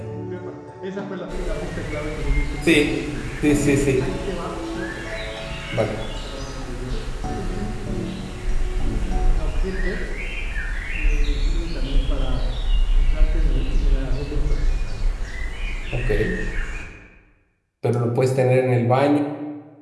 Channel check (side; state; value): both; identical; correlation 1.00